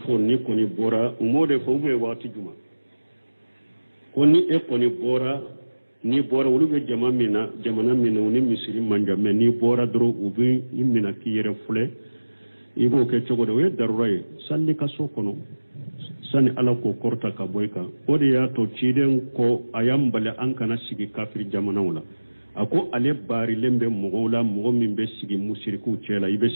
ni ko ni bora umode fo be wati juma ko ni e ko ni bora wulu be jamana mina ni misiri manja me ni bora dro ubi imina ki yere fule ibo ke chogo we darurai salli ka so kono sani ala ko korta ka boyka ode ya to ciden ko ayambale an kana sigi kafir jamana wala ako ale bari lembe mogola mogo min be sigi musiriku cela ibe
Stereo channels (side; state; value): both; inverted; correlation -1.00